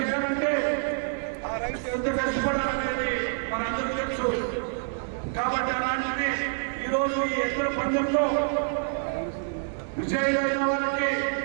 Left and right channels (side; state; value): left; silent; 60 dB below the other